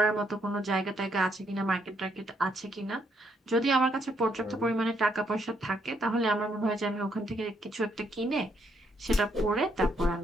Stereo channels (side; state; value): both; normal; correlation 0.73